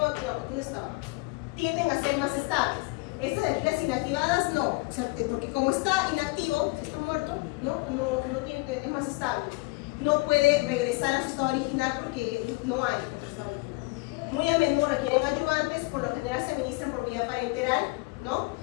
¿dónde estaba? Tienden a ser más estables. Estas de aquí, las inactivadas, no. O sea, porque como está inactivo, está muerto, no tiene, es más estable. No puede regresar a su estado original porque no hay. Muy a menudo requieren ayudantes, por lo general se administran por vía parenteral, ¿no?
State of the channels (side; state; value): right; quieter; 24.9 dB